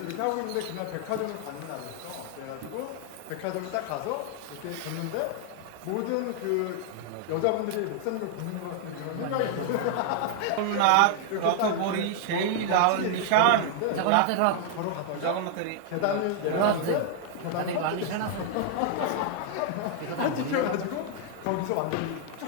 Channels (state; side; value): different; both; correlation 0.00